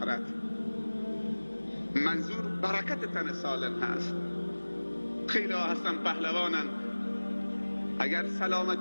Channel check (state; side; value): inverted; both; correlation -1.00